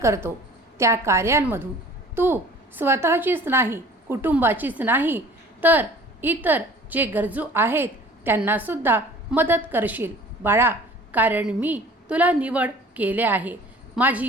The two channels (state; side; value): normal; both; correlation 0.48